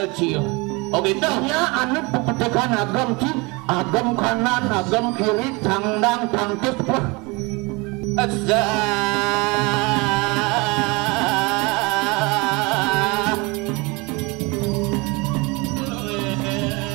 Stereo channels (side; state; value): left; quieter; 26.6 dB